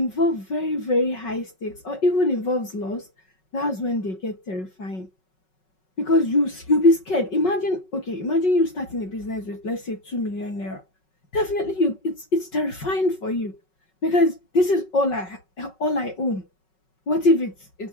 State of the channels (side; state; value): right; late; 5.4 ms